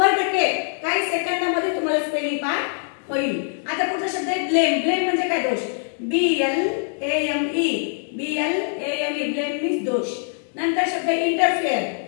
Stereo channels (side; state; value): right; silent; 63 dB below the other